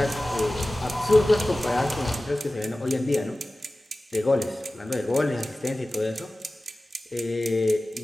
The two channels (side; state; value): both; normal; correlation 0.96